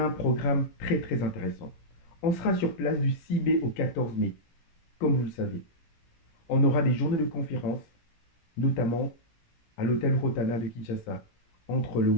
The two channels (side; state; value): right; late; 17 ms